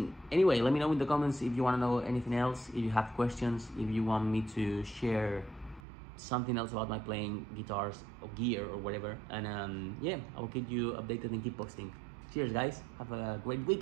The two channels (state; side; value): drops out; left; at 5.8 s